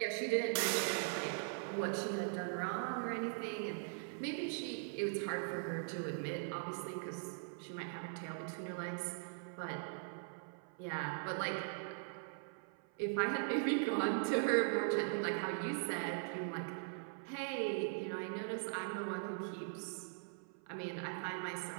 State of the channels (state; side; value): silent; left; 50 dB below the other